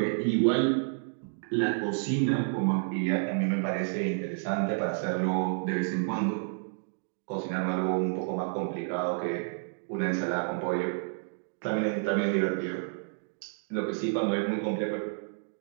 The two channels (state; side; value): silent; left; digital silence